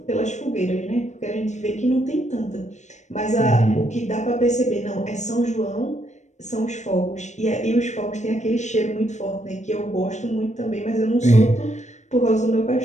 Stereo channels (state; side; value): late; right; 0.34 ms